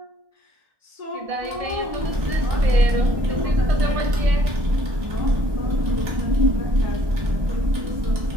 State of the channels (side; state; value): left; late; 1.2 ms